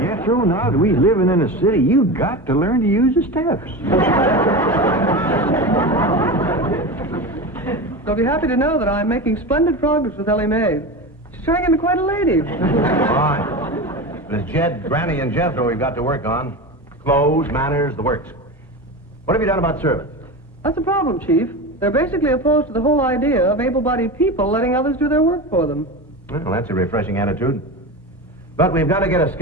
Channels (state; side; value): normal; both; correlation 0.25